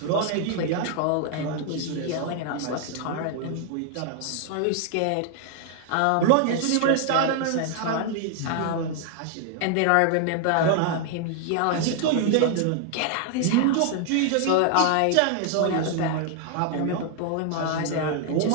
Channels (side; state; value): both; different; correlation 0.00